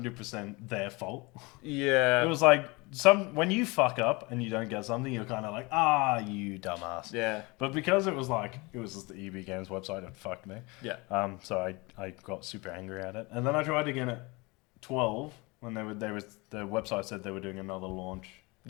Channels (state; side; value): quieter; right; 25.7 dB